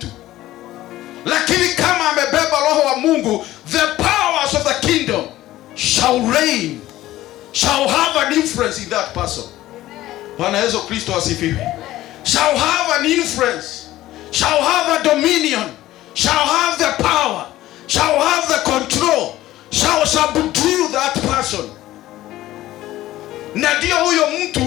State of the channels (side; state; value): right; quieter; 15.4 dB